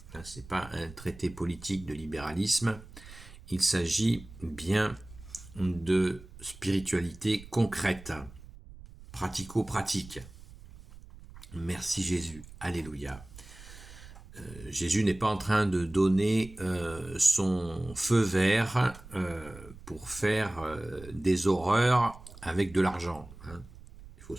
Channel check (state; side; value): noise; right; rumble, 18 dB below the sound